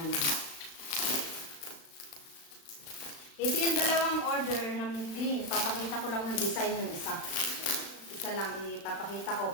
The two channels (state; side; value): late; right; 36 ms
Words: na. Ito yung dalawang order na mint green. Papakita ko lang ng design ng isa. Isa lang ipapakita ko